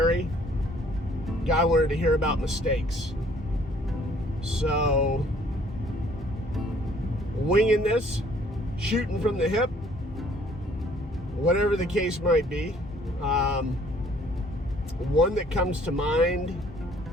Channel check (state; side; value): normal; both; correlation 0.59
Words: guy wanted to hear about mistakes. So, winging this, shooting from the hip, whatever the case might be. One that comes to mind